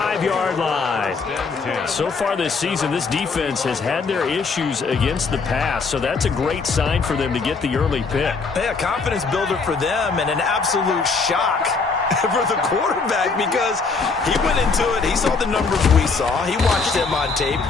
line. So far this season, this defense has had their issues against the pass, so that's a great sign for them to get the early pick. Yeah, confidence builder for them and an absolute shock for the quarterback because he went into it. He saw the numbers we saw. He watched them on tape.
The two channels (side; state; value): right; quieter; 4.6 dB